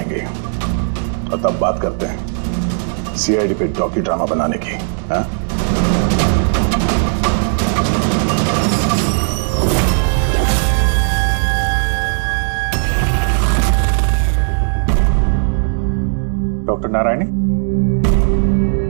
और तब बात करते हैं सीआईडी पे डॉक्यू ड्रामा बनाने की। हाँ? डॉक्टर नारायणी?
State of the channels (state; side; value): silent; left; digital silence